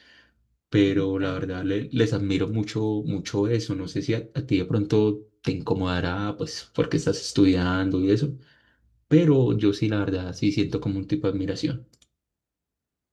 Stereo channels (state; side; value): identical; both; correlation 1.00